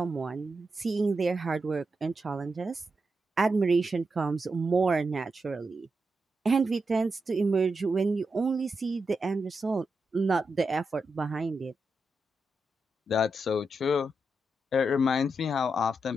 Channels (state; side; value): normal; both; correlation 0.86